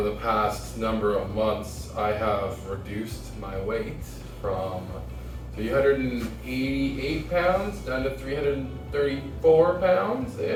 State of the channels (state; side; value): identical; both; correlation 1.00